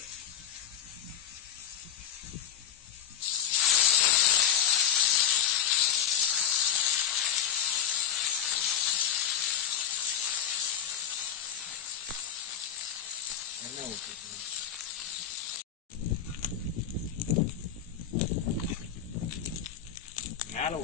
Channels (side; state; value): right; quieter; 9.3 dB